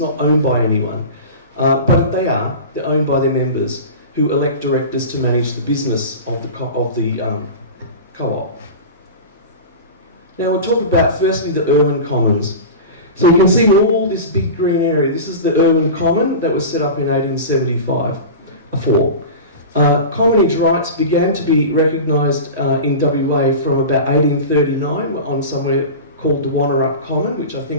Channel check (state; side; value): inverted; both; correlation -0.30